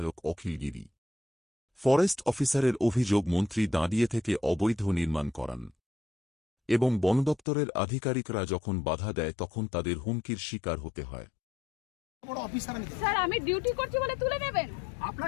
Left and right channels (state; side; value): drops out; right; at 7.4 s